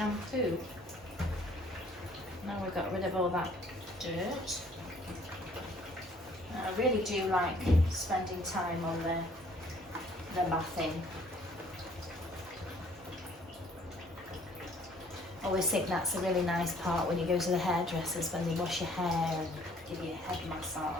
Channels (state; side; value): normal; both; correlation 0.59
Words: Now we've got rid of all that dirt. I really do like spending time on the bathing. I always think that's a really nice part when you go to the hairdressers, when they wash your hair and give you a head